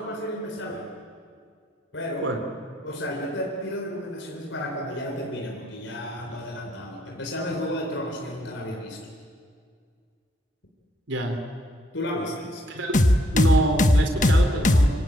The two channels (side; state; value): both; normal; correlation 0.71